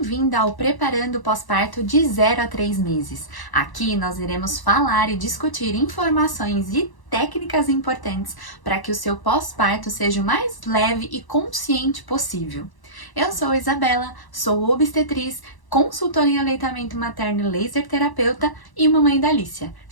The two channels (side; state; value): right; late; 1.0 ms